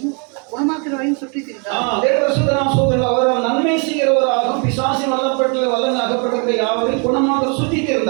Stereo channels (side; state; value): left; quieter; 36.9 dB